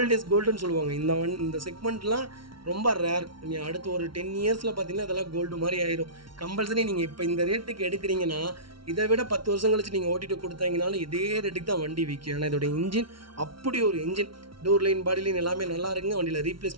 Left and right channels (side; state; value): left; late; 0.74 ms